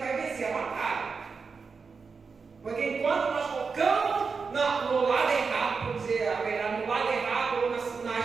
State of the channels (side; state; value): left; quieter; 5.1 dB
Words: vencer a batalha. Porque enquanto nós focamos no lado errado, por dizer a verdade, no lado errado, ou